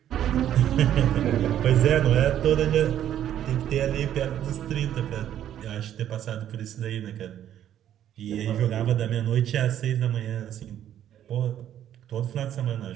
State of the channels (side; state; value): left; quieter; 10.9 dB